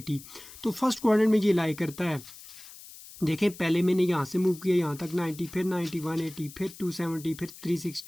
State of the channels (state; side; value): noise; left; hiss, 17 dB below the sound